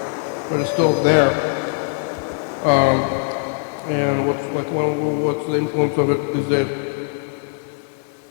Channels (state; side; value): silent; right; 59 dB below the other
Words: but it's still there. And what's the influence of it these days?